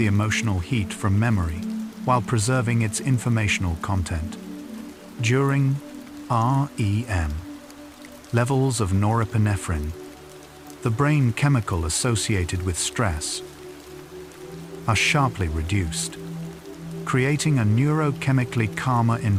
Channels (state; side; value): identical; both; correlation 1.00